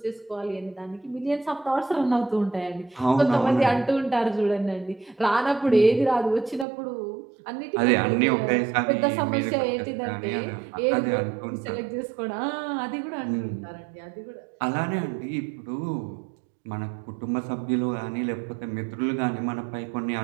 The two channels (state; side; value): drops out; left; at 6.7 s